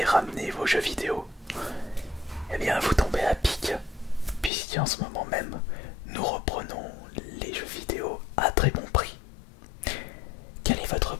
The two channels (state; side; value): drops out; right; at 4.5 s